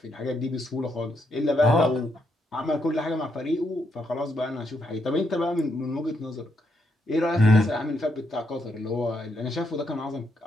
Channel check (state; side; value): normal; both; correlation 0.78